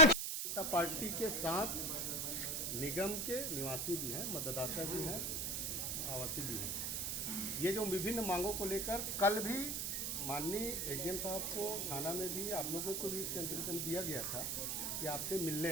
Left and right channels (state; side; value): noise; right; hiss, 1 dB below the sound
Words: जनता पार्टी के साथ निगम के निवासी भी हैं, मतदाता भी हैं, आवासी भी हैं। ये जो विभिन्न मांगों को लेकर कल भी माननीय एसडीएम साहब को थाना में भी आप लोगों को भी इंटीमेशन दिया गया था कि आपसे